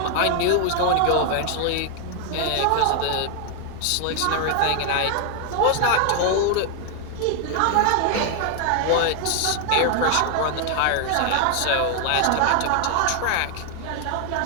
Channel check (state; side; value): different; both; correlation 0.00